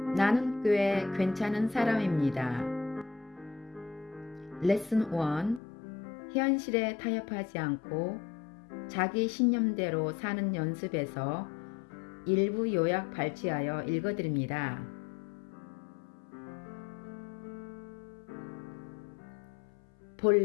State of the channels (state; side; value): drops out; right; at 5.6 s